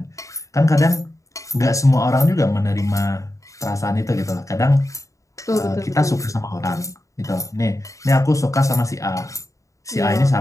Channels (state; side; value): late; right; 0.16 ms